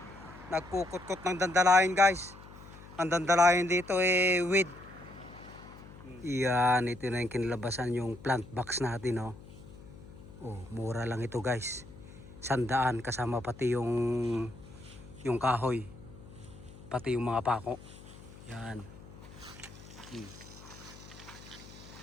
Nagkukot-kot ng dandalayan guys. Ang dandalayan dito eh with. Yan, ito na yung kinalabasan yung plant box natin oh. Oh, mura lang ito guys. 100 kasama pati yung kahoy. Pati yung mga pako. Yan.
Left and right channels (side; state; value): left; noise; hum, 18 dB below the sound